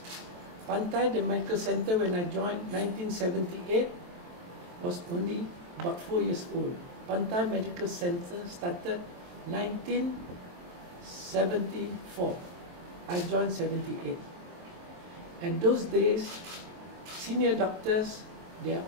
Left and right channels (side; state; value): left; late; 23 ms